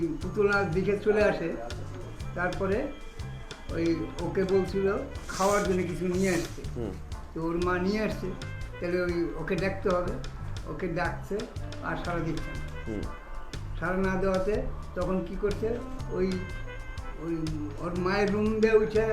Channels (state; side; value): identical; both; correlation 1.00